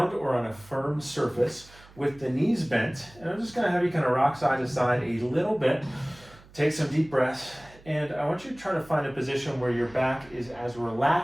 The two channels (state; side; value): noise; right; hum, 24 dB below the sound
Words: or on a firm surface with the knees bent, and I'm just gonna have you kind of rock side to side a little bit, take some deep breaths, and I want you to try to find a position where your back is as